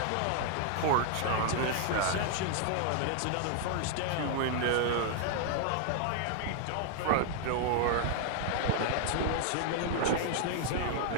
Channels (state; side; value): different; both; correlation 0.00